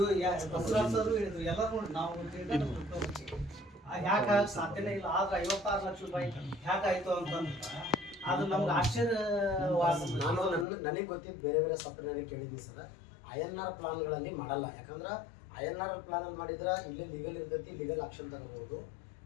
ಬಸವರಾಜರು ಹೇಳಿದ್ರು ಎಲ್ಲರೂ ನೋಡಿ ನಾವು ಯಾಕೆ ಸಾಧ್ಯನೇ ಇಲ್ಲ ಆದ್ರೆ 56 ಲಕ್ಷ ರೂಪಾಯಿ ಯಾಕಾಯ್ತು ಅಂತಂದ್ರೆ ಅದು ನಮ್ಗೆ ಆಶ್ಚರ್ಯವಾದ ನಾನು ನನಗೆ ಗೊತ್ತಿದ್ದು ಬೇರೆ ಬೇರೆ ಸಾಫ್ಟ್ವೇರ್ನಲ್ಲಿ ಕೇಳಿದ್ವಿ ಸರ್ INR ಪ್ಲಾನ್ಗಳಲ್ಲಿ ಮಾಡಲ್ಲ ಯಾಕಂದ್ರೆ INR ಪ್ಲಾನಲ್ಲಿ ಮಾಡಿದ್ರೆ ಇಲ್ಲೇ ಲೀಗಲ್ ಇರ್ತೈತಿ ಲೀಗಲ್ ಆಕ್ಷನ್ ತಗೋಬಹುದು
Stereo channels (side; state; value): right; drops out; at 10.7 s